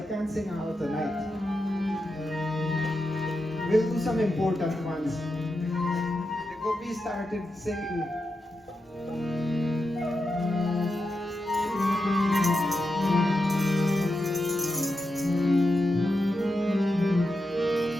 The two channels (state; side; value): normal; both; correlation 0.88